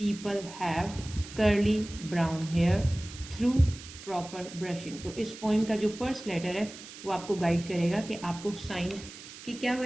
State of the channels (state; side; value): noise; right; hiss, 15 dB below the sound